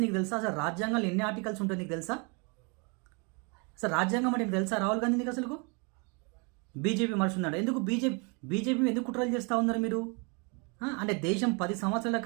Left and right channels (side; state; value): left; quieter; 33.2 dB